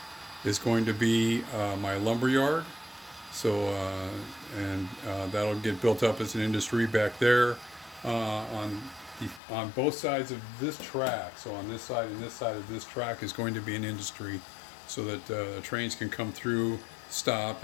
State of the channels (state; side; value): drops out; right; at 9.4 s